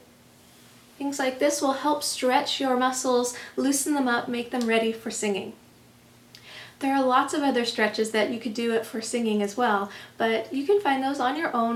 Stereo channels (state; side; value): identical; both; correlation 1.00